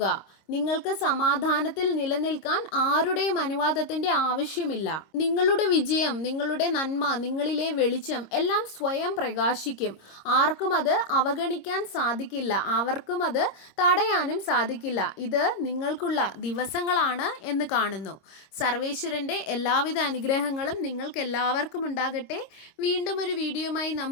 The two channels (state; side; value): late; right; 26 ms